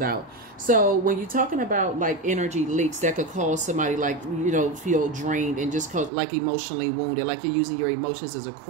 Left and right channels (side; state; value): left; drops out; at 6.1 s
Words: out. So when you're talking about like energy leaks, that could cause somebody, like, you know, feel drained and just like emotionally wounded, like you're using your emotions as a